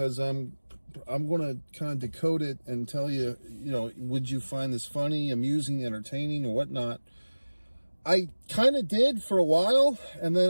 I'm going to kind of decode it and tell you, would you find this funny, amusing, entertaining, or whatnot? I kind of did for a while, and then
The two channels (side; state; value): both; inverted; correlation -1.00